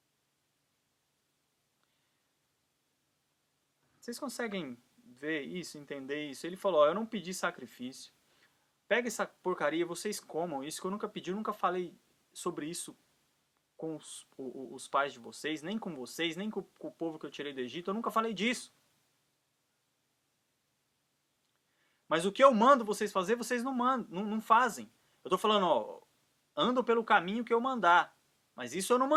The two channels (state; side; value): identical; both; correlation 1.00